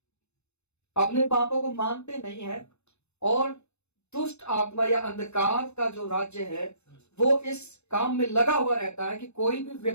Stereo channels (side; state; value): right; late; 0.81 ms